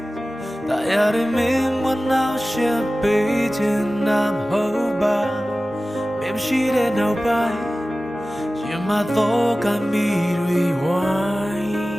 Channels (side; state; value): both; normal; correlation 0.96